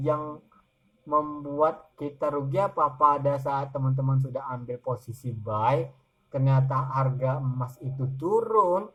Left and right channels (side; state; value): both; identical; correlation 1.00